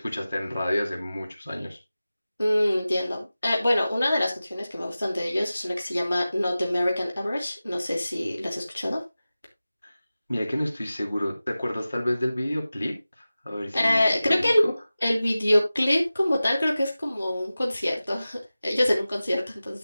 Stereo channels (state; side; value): inverted; both; correlation -0.96